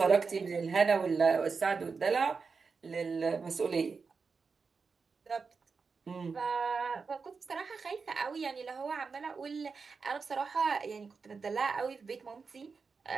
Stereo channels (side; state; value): left; quieter; 5.0 dB